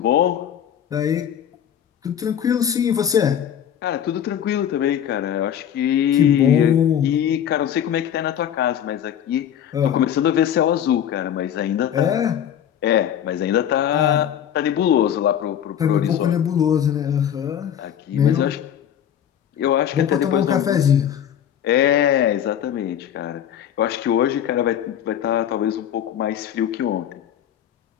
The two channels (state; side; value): quieter; right; 9.7 dB